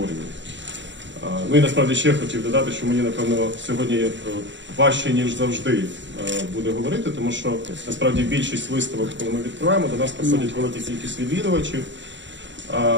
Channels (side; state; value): left; late; 0.53 ms